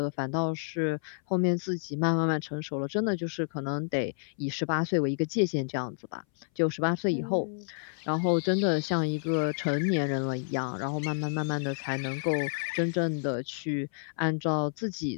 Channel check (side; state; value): right; silent; 58 dB below the other